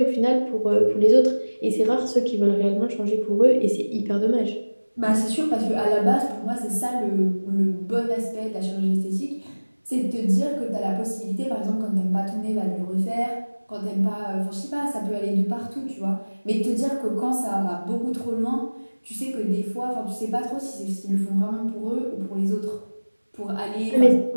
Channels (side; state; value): both; inverted; correlation -1.00